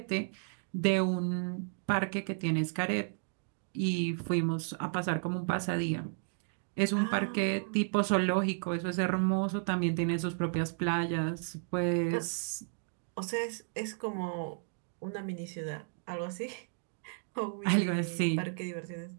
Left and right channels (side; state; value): left; silent; digital silence